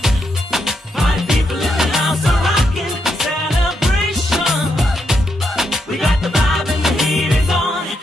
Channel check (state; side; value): normal; both; correlation 0.80